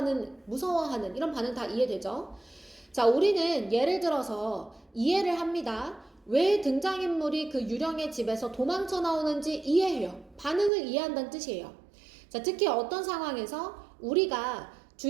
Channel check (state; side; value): drops out; left; at 10.7 s